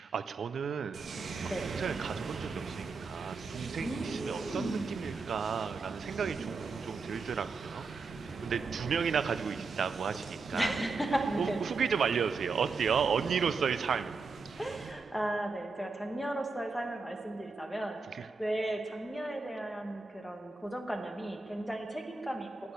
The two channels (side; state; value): left; quieter; 4.3 dB